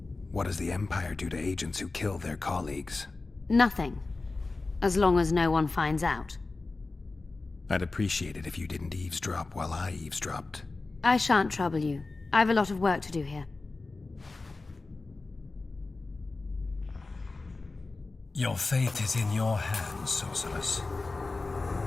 What does the Empire do to agents who kill their colleagues? Nothing. As long as no one finds out. I'd appreciate it if you didn't eavesdrop while I eavesdropped. I shan't trouble you. I have a lot of work to do here. Your fate is in your hands, sorceress.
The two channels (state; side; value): quieter; right; 3.5 dB